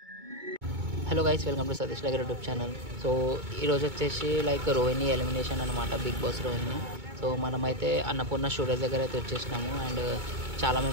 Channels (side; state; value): left; late; 2.2 ms